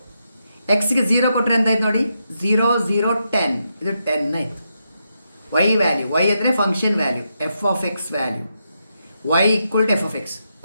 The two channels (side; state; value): both; inverted; correlation -0.83